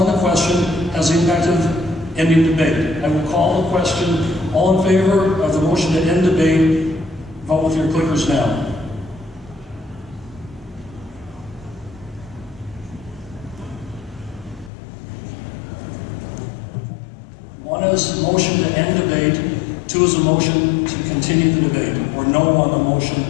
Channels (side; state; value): right; drops out; at 14.7 s